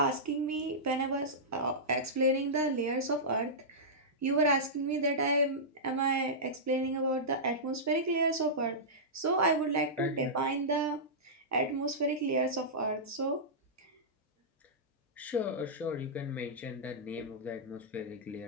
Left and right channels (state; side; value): normal; both; correlation -0.14